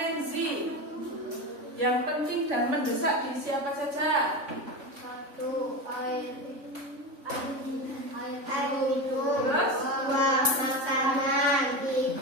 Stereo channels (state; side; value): late; left; 3.5 ms